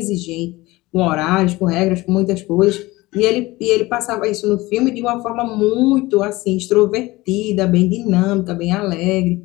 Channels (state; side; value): quieter; right; 20.1 dB